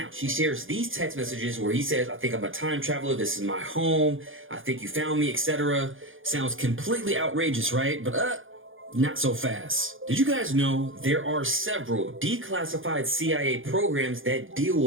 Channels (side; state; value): left; late; 0.58 ms